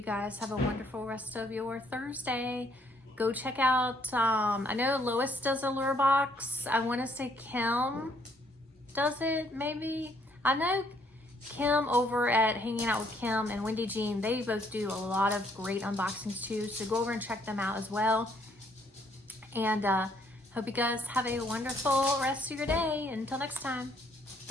guys have a wonderful rest of your Thursday. Go check out, I know Lois does Allure box. I want to say Kim does it, maybe. I know Kim over at Hanging Out with Kim and Wendy Jean, they both do a lot of great unboxings too. So go over and check them out as well. And hope you guys have a wonderful rest of your day. Until next time,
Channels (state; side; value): normal; both; correlation 0.67